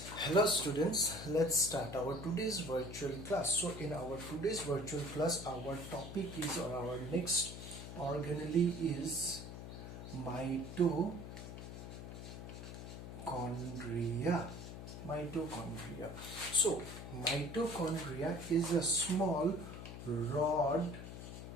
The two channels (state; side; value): noise; left; hum, 10 dB below the sound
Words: Hello students, let's start our today's virtual class. So in our today's virtual class, our topic is, or our next organelle is mitochondria. Mitochondria. So mitochondria is a small rod-shaped